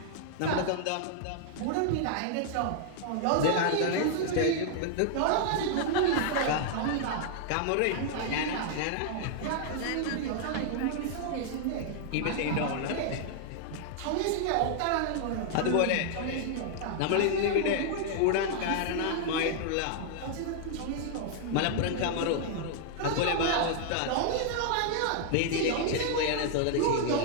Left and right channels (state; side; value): different; both; correlation -0.01